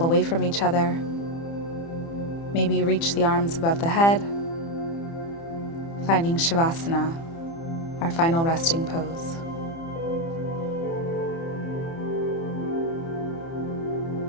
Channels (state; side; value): late; right; 30 ms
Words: away from each other. Maybe reach the arms above the head, finding Shavasana, our final resting pose.